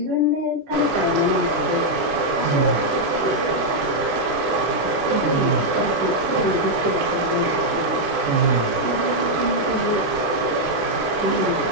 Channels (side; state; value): left; late; 18 ms